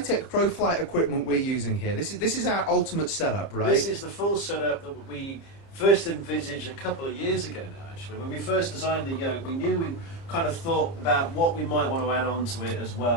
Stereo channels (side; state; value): right; late; 30 ms